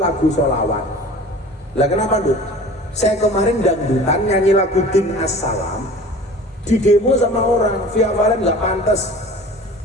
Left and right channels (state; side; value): normal; both; correlation 0.42